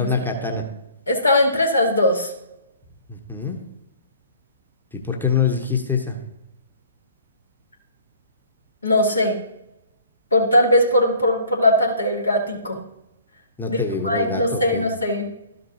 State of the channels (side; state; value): both; inverted; correlation -0.52